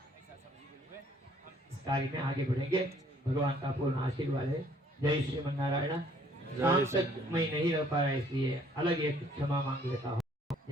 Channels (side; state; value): both; normal; correlation 0.60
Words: समझिए हुए हम इस कार्य में आगे बढ़ेंगे। भगवान का पूर्ण आशीर्वाद है। जय श्रीमन नारायण। शाम तक मैं नहीं रह पाया, इसलिए अलग एक क्षमा मांग लेता हूँ।